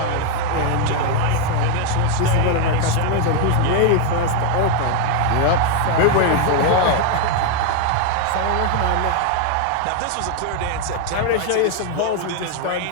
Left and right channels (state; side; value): different; both; correlation 0.01